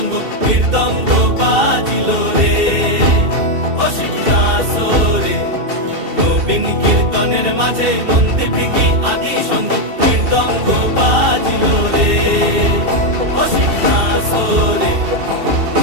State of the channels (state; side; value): late; left; 2.7 ms